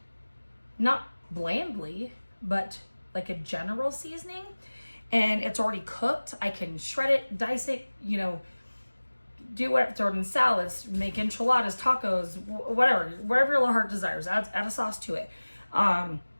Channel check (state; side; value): inverted; both; correlation -1.00